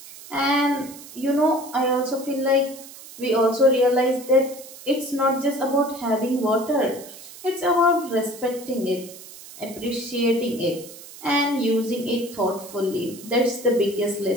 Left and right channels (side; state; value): right; noise; hiss, 16 dB below the sound